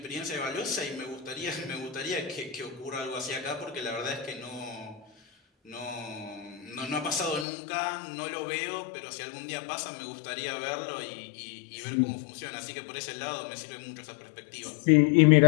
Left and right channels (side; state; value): right; drops out; at 7.5 s